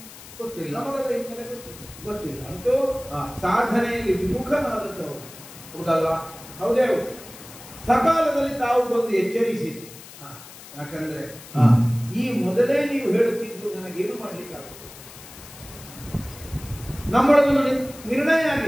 ಗೊತ್ತಿಲ್ಲ, ನಮಗದ ಹಿನ್ನೆಲೆ ಗೊತ್ತಿಲ್ಲ. ಅಂತೂ ಸಾಧನೆಯಲ್ಲಿ ವಿಮುಖನಾದದ್ದವರು ಹೌದಲ್ಲ? ಹೌದೇ. ಸಕಾಲದಲ್ಲಿ ತಾವು ಬಂದು ಎಚ್ಚರಿಸಿದ್ದು. ಯಾಕಂದ್ರೆ ಈ ಮೊದಲೇ ನೀವು ಹೇಳುತ್ತಿದ್ದು ನನಗೇನು ಮಾಡ್ಲಿಕ್ಕಾಗುತ್ತೆ. ನಮ್ಮೊಳಗೊಂದು ನಿರ್ಣಯ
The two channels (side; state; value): left; noise; hiss, 17 dB below the sound